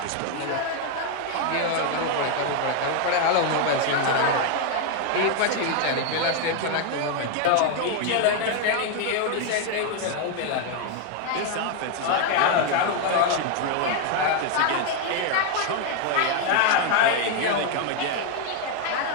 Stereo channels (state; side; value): different; both; correlation 0.01